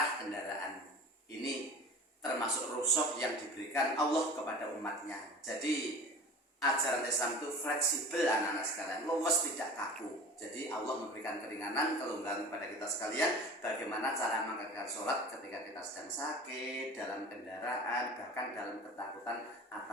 kendaraan. Ini termasuk rukhsah yang diberikan Allah kepada umatnya. Jadi ajaran Islam itu fleksibel anak-anak sekalian, luwes tidak kaku. Jadi Allah memberikan keringanan, kelonggaran kepada kita sekalian, bagaimana cara mengerjakan sholat ketika kita sedang sakit, dalam kendaraan, bahkan dalam ketakutan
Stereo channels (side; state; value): both; normal; correlation 0.38